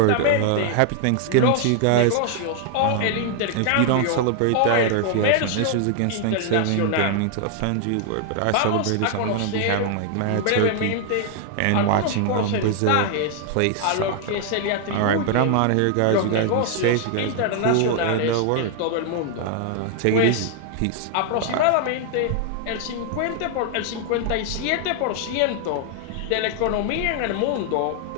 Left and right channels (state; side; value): different; both; correlation 0.00